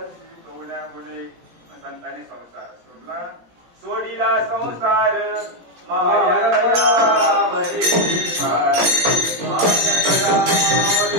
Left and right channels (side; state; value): left; late; 17 ms